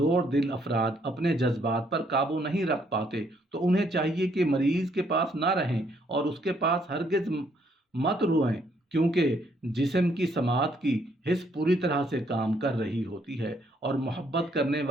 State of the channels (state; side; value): normal; both; correlation 0.70